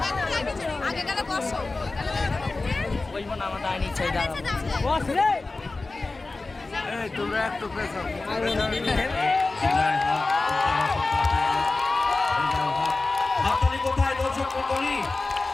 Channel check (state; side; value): quieter; right; 3.5 dB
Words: হাততালি কোথায় দর্শক মন্ডলী?